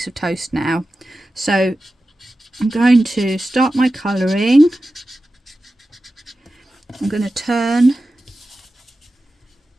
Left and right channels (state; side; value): normal; both; correlation 0.93